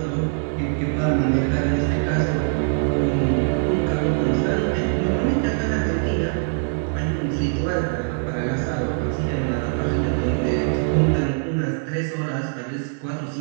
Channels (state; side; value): silent; left; 64 dB below the other